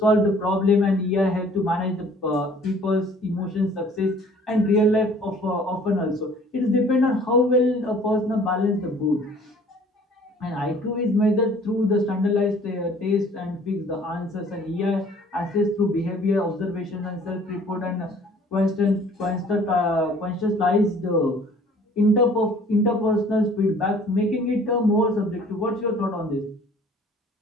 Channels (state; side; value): normal; both; correlation 0.53